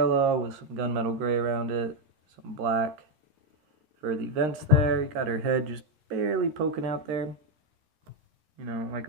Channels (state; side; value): late; left; 13 ms